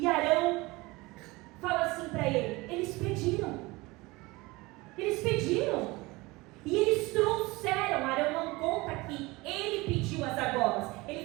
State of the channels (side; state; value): left; quieter; 22.5 dB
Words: Arão fala assim para ele: eles pediram. E eles trouxeram. Arão não conta que ele pediu as argolas. Ele